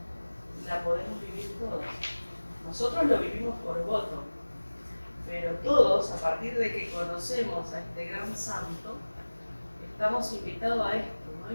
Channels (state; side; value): inverted; both; correlation -1.00